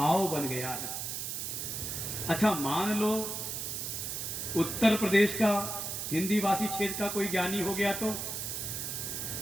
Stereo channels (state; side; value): noise; right; hiss, 4 dB below the sound